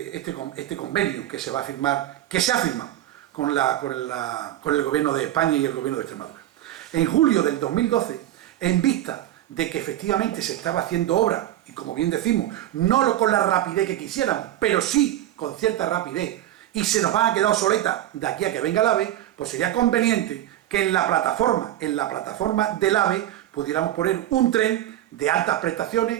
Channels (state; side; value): quieter; left; 13.0 dB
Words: convenio que se va a firmar, que se ha firmado con el gobierno de España y el gobierno de Extremadura? En julio del 2012, en vista de que efectivamente se estaba haciendo obra, y como bien decimos, no con la rapidez que quisiéramos, pero sí con cierta rapidez, y se nos van a quedar obsoletas de aquí a que venga el AVE, pues sería conveniente que en la plataforma del AVE, pudiéramos poner un tren de altas